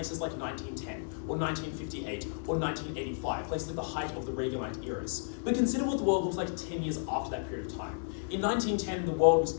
like 1910, or 1958, or 1985, places at the height of the Reaganite eras. But consider what the world looked like 10 years after that period of time. In 1910, the world was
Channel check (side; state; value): right; silent; digital silence